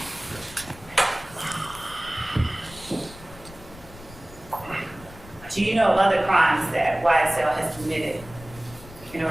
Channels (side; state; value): left; noise; rumble, 19 dB below the sound